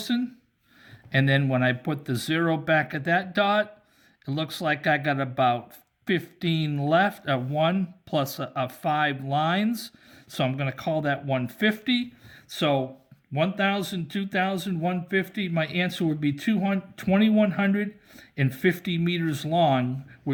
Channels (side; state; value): both; identical; correlation 1.00